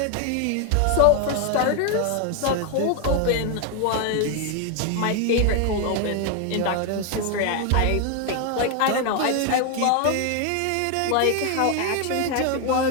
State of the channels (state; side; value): different; both; correlation 0.01